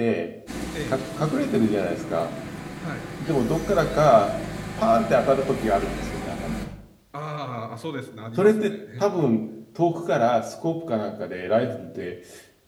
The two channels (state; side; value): identical; both; correlation 1.00